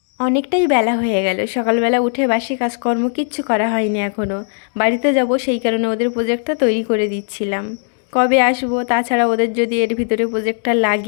অনেকটাই বেলা হয়ে গেল, সকালবেলা উঠে বাসি কাজকর্ম কিচ্ছু করা হয়নি এখনও। বাড়িতে যাব, সেই কারণে ওদের প্রজেক্টটা তৈরি করে দিচ্ছিলাম। কবে আসবো, তাছাড়া ওদের যদি এর ভিতরে প্রজেক্টটা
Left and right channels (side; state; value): right; silent; 56 dB below the other